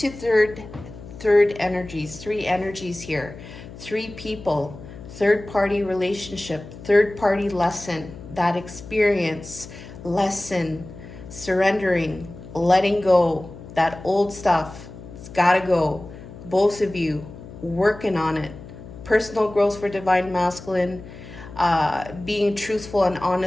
third energies, three energies here, three people, third-party relationship, third-party lesson, that experience, lesson, surrendering, letting go, that old stuff, it's gotta go. Both of you working on it. Personal growth for divine masculine, being truthful and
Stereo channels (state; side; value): noise; left; hum, 15 dB below the sound